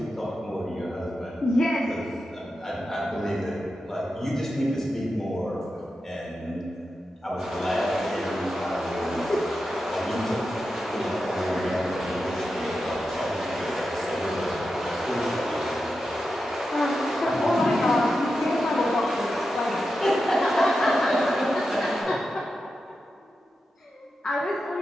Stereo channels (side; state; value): both; normal; correlation 0.90